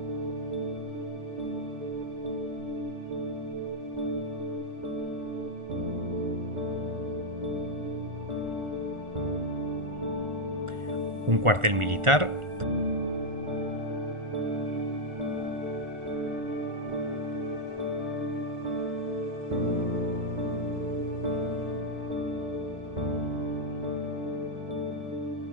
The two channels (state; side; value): late; left; 1.4 ms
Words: un cuartel militar